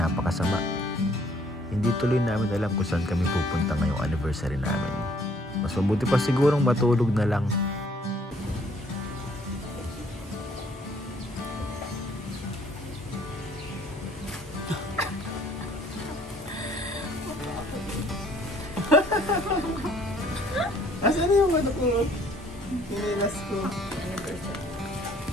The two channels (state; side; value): normal; both; correlation 0.61